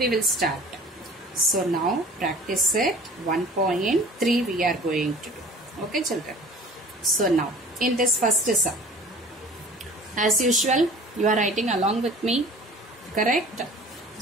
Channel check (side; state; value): both; normal; correlation 0.45